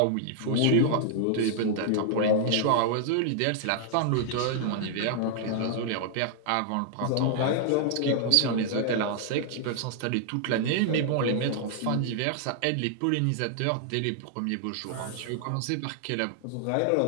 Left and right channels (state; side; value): different; both; correlation -0.01